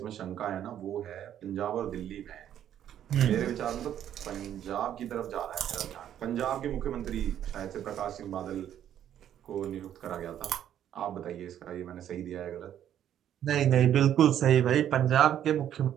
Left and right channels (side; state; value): left; quieter; 10.5 dB